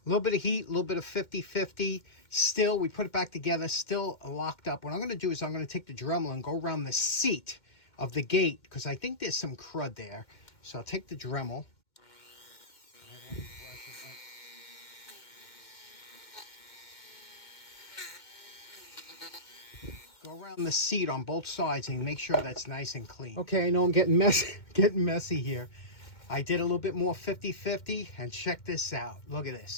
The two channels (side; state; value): right; late; 2.1 ms